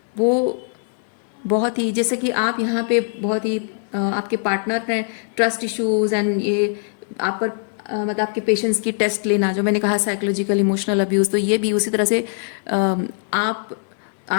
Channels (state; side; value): silent; right; 65 dB below the other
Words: वो बहुत ही, जैसे कि आप यहाँ पे बहुत ही आपके पार्टनर ने ट्रस्ट इश्यूज एंड ये आप पर मतलब आपके पेशेंस की टेस्ट लेना, जो मैंने कहा साइकोलॉजिकल इमोशनल अब्यूज़, तो ये भी उसी तरह से